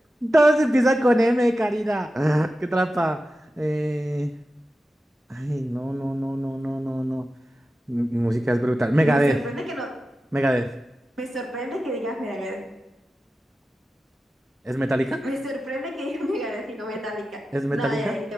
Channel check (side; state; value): both; normal; correlation 0.93